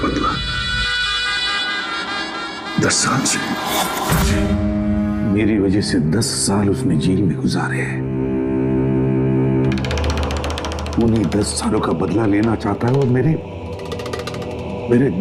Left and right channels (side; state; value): both; identical; correlation 1.00